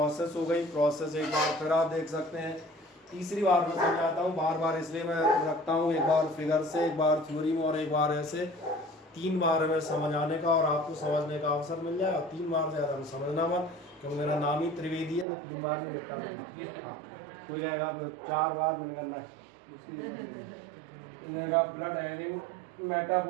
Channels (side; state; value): left; drops out; at 15.2 s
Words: हो गई। प्रोसेस एक बार फिर आप देख सकते हैं, तीसरी बार मैं समझाता हूँ, बार बार इसलिए मैं रखता हूँ, एक बार फिगर से, एक बार थ्योरी में और एक बार ऐसे, 3 बार हमें समझाने का और आपको समझने का अवसर मिल जाएगा। 3 बार से ज़्यादा समझना मत, क्योंकि मेरा नाम ही त्रिवेदी है, तो 3 बार में निपटा लूँगा। हाँ, कोई कहेगा 4 बार मैंने करना है, उसकी ब्लड हैविंग